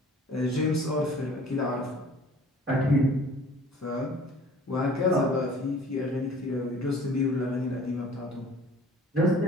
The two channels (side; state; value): both; normal; correlation 0.49